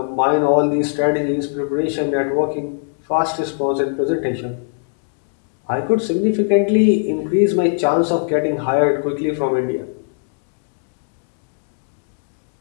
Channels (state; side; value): silent; right; digital silence